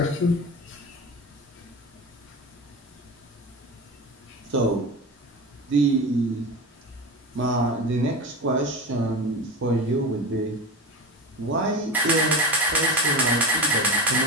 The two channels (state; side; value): normal; both; correlation 0.26